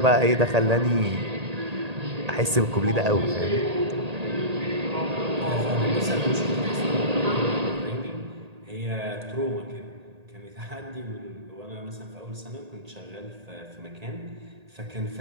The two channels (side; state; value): left; late; 1.8 ms